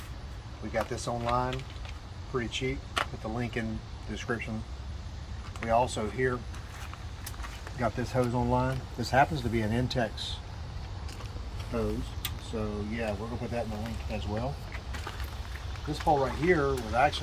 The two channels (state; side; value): identical; both; correlation 1.00